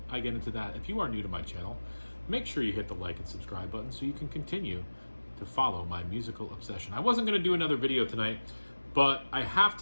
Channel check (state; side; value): inverted; both; correlation -1.00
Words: I get into that, if you are new to my channel, make sure you hit the like and subscribe button so you can continue to follow my musical obsession. I wasn't going to do another video tonight, but I have